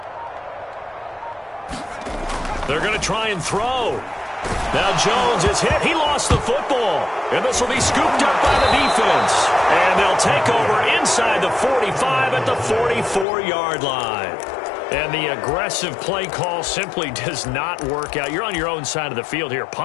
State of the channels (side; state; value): right; drops out; at 13.2 s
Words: They're going to try and throw. Now Jones is hit. He lost the football. And this will be scooped up by the defense. And they'll take over inside the 45 at the 44-yard line. And the aggressive play call simply does not work out. You're on your own side of the field here.